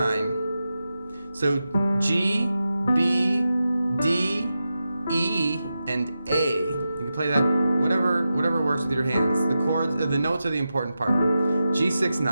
So G, B, D, E, and A. You can play that whatever works with your hands. The chords, the notes are the important part. G6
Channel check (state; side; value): inverted; both; correlation -0.90